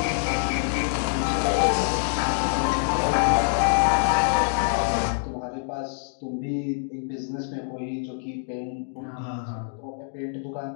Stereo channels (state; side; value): silent; right; digital silence